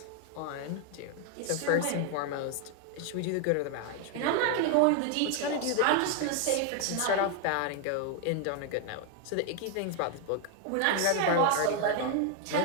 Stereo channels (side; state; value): both; different; correlation 0.01